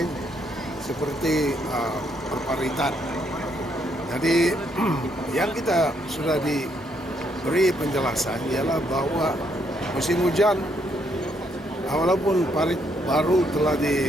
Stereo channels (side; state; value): both; normal; correlation 0.73